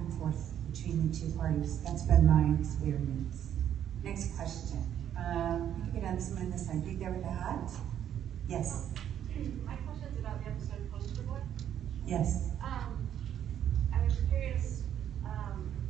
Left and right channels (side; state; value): left; quieter; 10.1 dB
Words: forth between the two parties. That's been my experience. Next question. Get on someone on this side. Big there with the hat? Yes. My question is about the episode Poster Boy. Yes. I was curious,